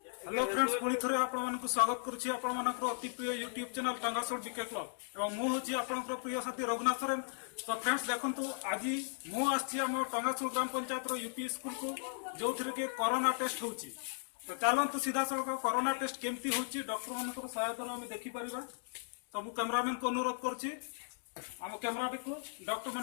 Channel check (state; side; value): silent; right; 53 dB below the other